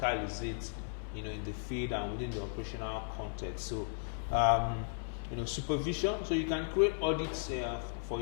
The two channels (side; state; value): right; silent; digital silence